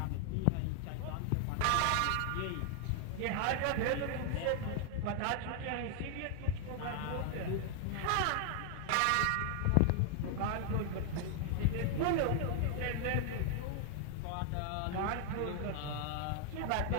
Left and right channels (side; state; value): both; different; correlation 0.00